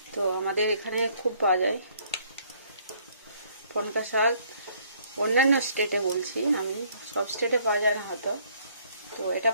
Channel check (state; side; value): inverted; both; correlation -0.63